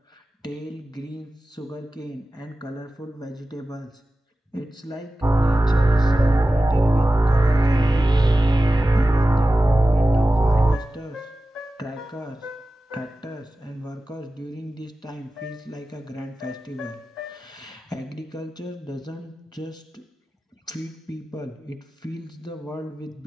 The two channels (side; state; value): both; normal; correlation 0.95